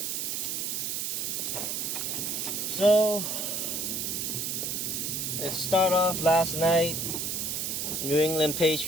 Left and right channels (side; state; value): right; noise; hiss, 1 dB below the sound